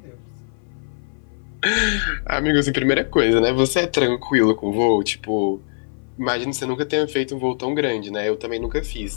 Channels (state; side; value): silent; right; 59 dB below the other